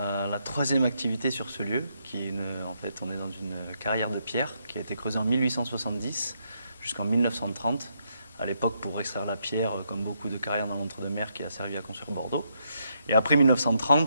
troisième activité sur ce lieu, en fait, on est dans une carrière de pierre qui a été creusée en 1870 jusqu'en 1930, à l'époque pour extraire la pierre, comme beaucoup de carrières dans l'entre-deux-mer qui a servi à construire Bordeaux. Et après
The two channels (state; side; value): inverted; both; correlation -0.77